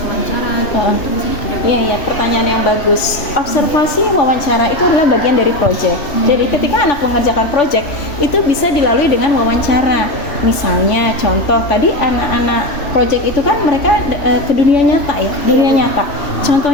wawancara gitu. Itu di sini ada. Iya, pertanyaan yang bagus. Observasi, wawancara itu adalah bagian dari project. Jadi ketika anak mengerjakan project itu bisa dilalui dengan wawancara. Misalnya contoh tadi anak-anak project itu kan mereka ke dunia nyata ya, dunia nyata.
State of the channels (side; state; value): right; late; 3.0 ms